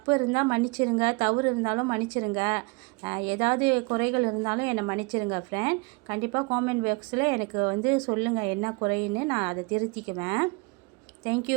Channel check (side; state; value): left; quieter; 28.8 dB